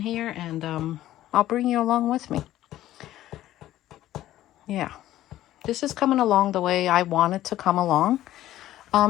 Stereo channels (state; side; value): quieter; right; 13.9 dB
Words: and I'll bring you along with me. Yeah, this is coming along the way I want it to come along.